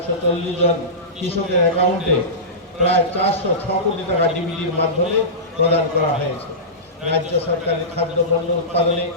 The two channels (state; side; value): normal; both; correlation -0.20